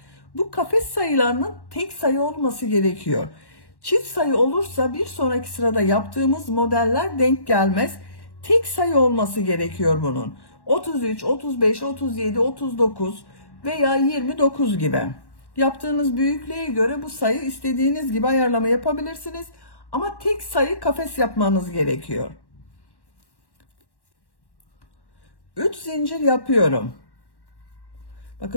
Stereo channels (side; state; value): right; late; 1.1 ms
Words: Bu kafes sayılarının tek sayı olması gerekiyor. Çift sayı olursa bir sonraki sırada yaptığımız modeller denk gelmez. Tek sayı olması gerekiyor bunun. 33, 35, 37, 39 veya 29 gibi. Yaptığınız büyüklüğe göre bu sayı istediğiniz gibi ayarlama yapabilirsiniz. Ama tek sayı kafes yapmanız gerekiyor. 3 zincir yapıyorum.